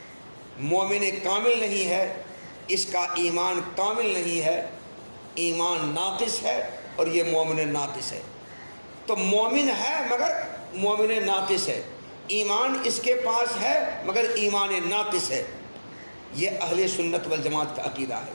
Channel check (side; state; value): both; inverted; correlation -1.00